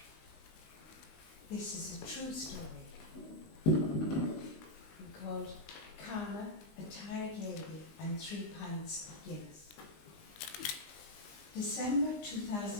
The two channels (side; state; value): right; late; 19 ms